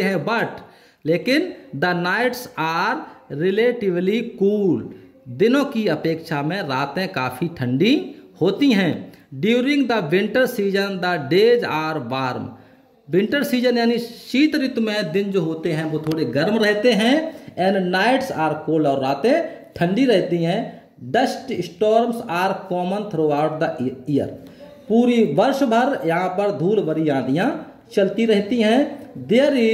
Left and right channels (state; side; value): identical; both; correlation 1.00